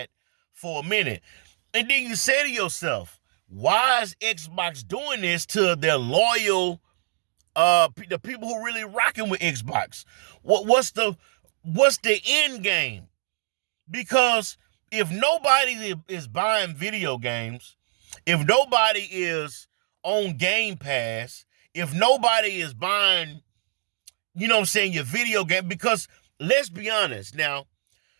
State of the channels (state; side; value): silent; left; digital silence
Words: for a minute? And then you say to yourself, why is Xbox doing this to their loyal, the people who really rocking with Xbox? What's the end game? Because if nobody is buying video games, if nobody is on Game Pass if nobody is buying, you know what I'm saying, your video game? Because let's be honest now,